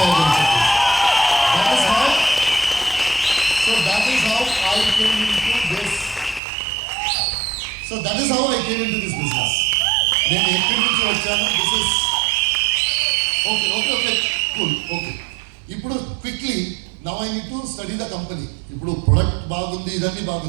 అని చెప్పి. That is how I came into this. So that is how I came into this business. నేను ఎక్కడి నుంచి వచ్చాను, this is okay cool okay. ఇప్పుడు quickly now I need to study the company. ఇప్పుడు product బాగుంది, ఇదన్నీ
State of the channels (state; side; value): drops out; left; at 6.4 s